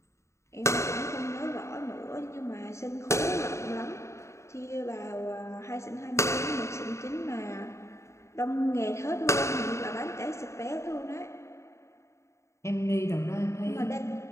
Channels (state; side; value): late; right; 0.14 ms